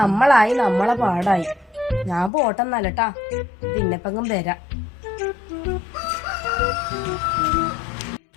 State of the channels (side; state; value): right; drops out; at 2.3 s